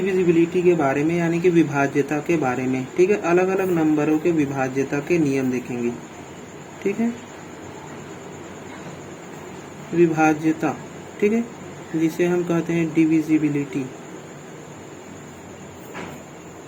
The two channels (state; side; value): identical; both; correlation 1.00